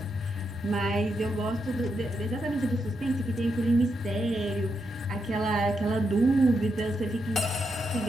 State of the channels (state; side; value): normal; both; correlation 0.83